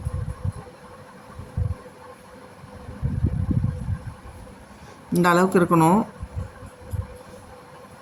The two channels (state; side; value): identical; both; correlation 1.00